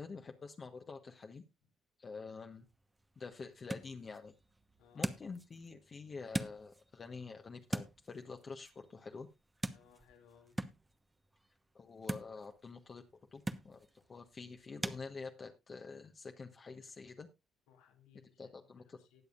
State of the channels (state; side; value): normal; both; correlation 0.93